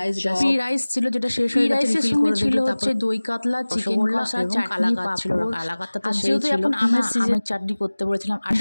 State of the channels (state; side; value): inverted; both; correlation -1.00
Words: পি রাইস ছিল যেটা শেষ হয়ে গেছে, রাইসের সঙ্গে ছিল হচ্ছে দই কাতলা, চিকেন কষা, চাটনি, পাঁপড়, কালাকাতা। তো যেহেতু এখন আমের সিজনে চাটনি করতে বলেছিলাম, আর